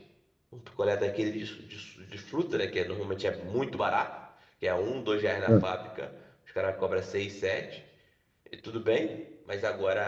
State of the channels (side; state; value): both; identical; correlation 1.00